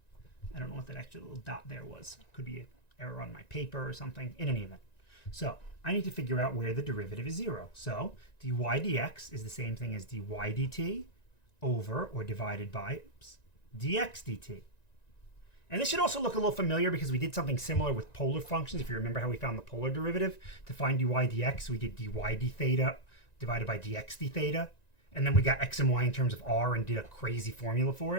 I don't know what that extra little dot there was. Could be an error on my paper or something. In any event. So I need to figure out where the derivative is 0. So dy dx is the same thing as dy dt over or divided by dx dt. And this should also look a little familiar because we did something similar with polar functions. If you remember how we found the polar derivative, to find dy dx, we did dy d theta divided by dx d theta. And then we got x and y in terms of r and did a crazy formula for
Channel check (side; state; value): right; late; 1.9 ms